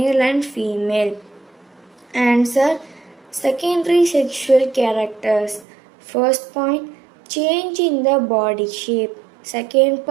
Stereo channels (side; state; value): left; drops out; at 5.7 s